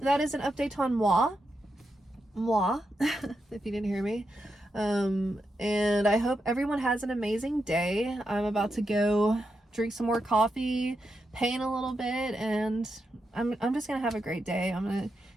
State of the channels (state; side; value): normal; both; correlation 0.85